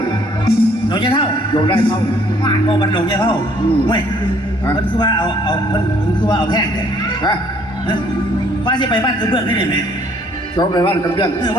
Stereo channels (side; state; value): both; normal; correlation 0.62